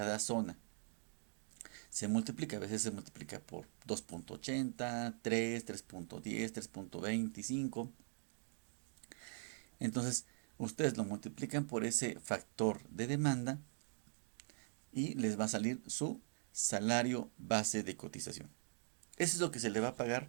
zona. Se multiplica, a veces se multiplica por 2.80, 3, 3.10, 3.25. Entonces, ustedes lo multiplican por ese factor de demanda y les va a salir su salario base de cotización. Eso es lo que se le va a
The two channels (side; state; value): left; silent; digital silence